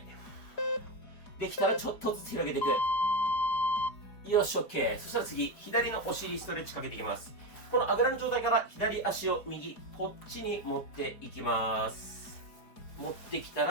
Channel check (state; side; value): late; right; 5.1 ms